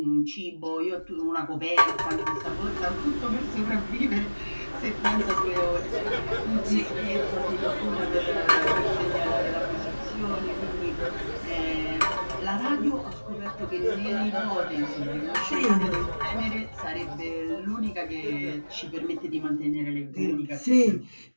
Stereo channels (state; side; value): inverted; both; correlation -1.00